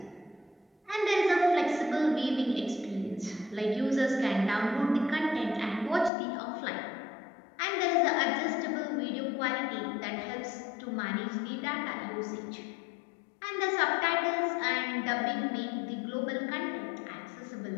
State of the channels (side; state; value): right; drops out; at 6.1 s